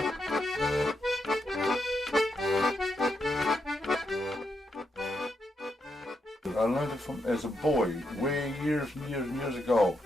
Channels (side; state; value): both; normal; correlation 0.82